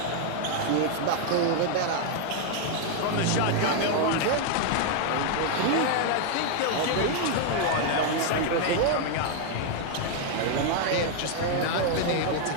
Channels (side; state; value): both; different; correlation 0.00